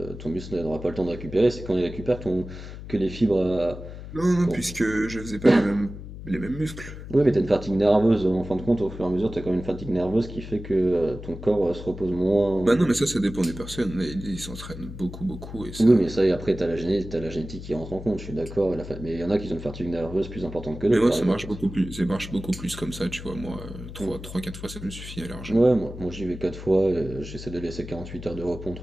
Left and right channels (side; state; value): left; noise; hum, 12 dB below the sound